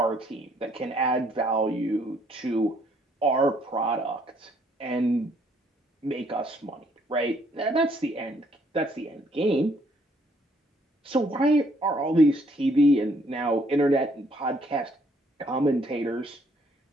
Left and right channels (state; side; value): normal; both; correlation 0.67